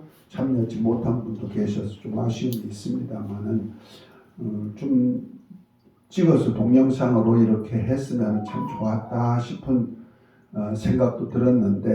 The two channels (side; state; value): both; identical; correlation 1.00